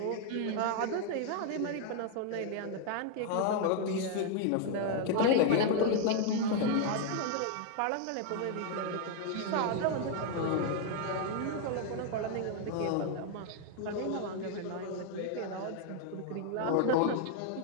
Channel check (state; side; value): different; both; correlation 0.00